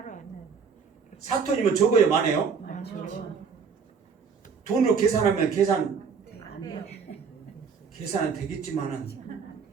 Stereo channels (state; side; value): quieter; left; 5.9 dB